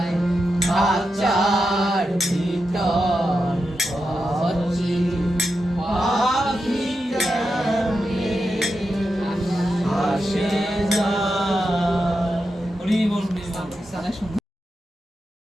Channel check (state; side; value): normal; both; correlation 0.88